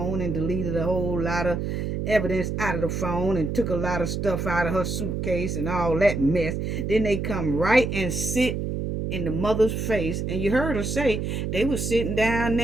and deleted a whole lot of evidence out of the phone and took a lot of stuff out of her suitcase and all that mess. Then they come right and sit in the mother's face, and you heard her say they was sitting down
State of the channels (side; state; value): right; noise; hum, 2 dB below the sound